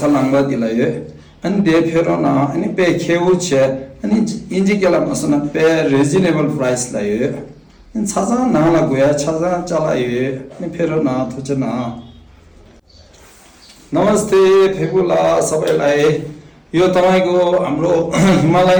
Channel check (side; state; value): both; identical; correlation 1.00